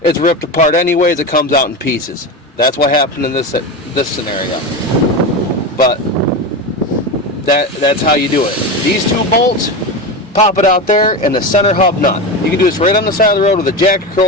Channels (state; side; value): normal; both; correlation 0.20